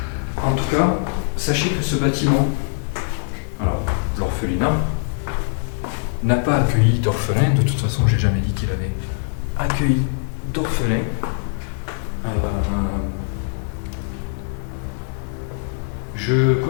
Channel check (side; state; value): right; silent; digital silence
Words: En tout cas, sachez que ce bâtiment, alors l'orphelinat, n'a pas accueilli d'orphelins. De toute façon, j'ai jamais dit qu'il avait accueilli d'orphelins. Je